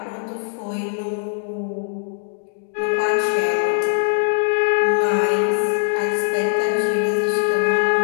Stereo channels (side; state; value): right; silent; digital silence